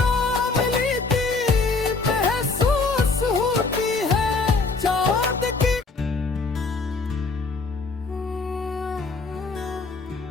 लेती महसूस होती है चाँद की।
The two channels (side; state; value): right; quieter; 4.0 dB